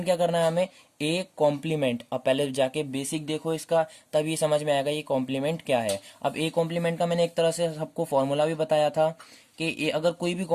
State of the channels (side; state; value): both; identical; correlation 1.00